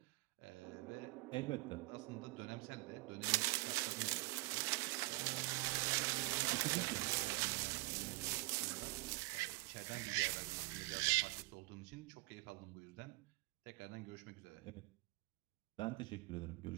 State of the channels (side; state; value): left; quieter; 24.3 dB